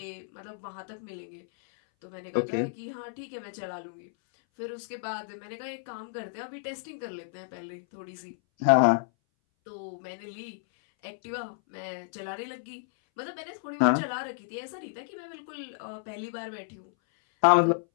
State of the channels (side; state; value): right; silent; 57 dB below the other